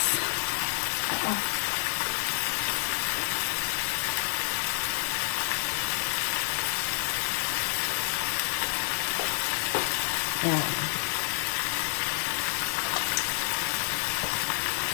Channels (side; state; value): right; silent; digital silence